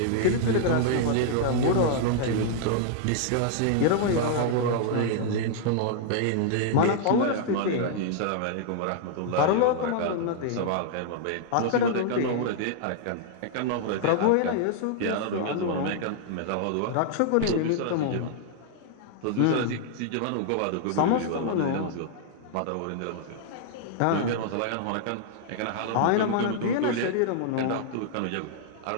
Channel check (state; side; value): different; both; correlation -0.01